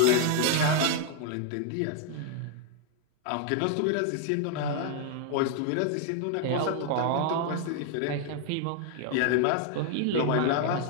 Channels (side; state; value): both; different; correlation 0.00